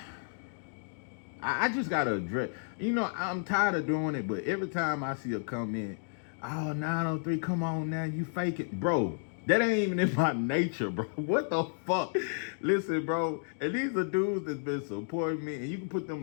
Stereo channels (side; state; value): right; silent; digital silence